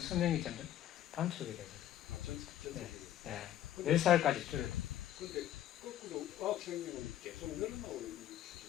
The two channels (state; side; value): quieter; right; 12.0 dB